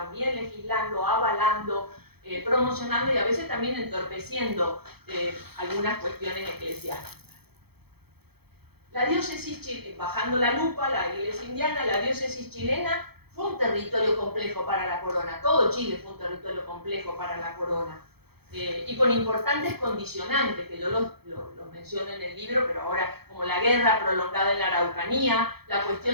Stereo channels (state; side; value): late; left; 0.96 ms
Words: legislando, avalando, promocionando y a veces también entorpeciendo algunas cuestiones eclesiásticas. La diócesis, bajando la lupa, la iglesia indiana, la diócesis chilena fue un territorio complejo para la corona, todo Chile fue un territorio complejo para la corona. Y con importantes condicionantes, que yo los menciono en el libro, pero ahora como la guerra prolongada en la Araucanía, la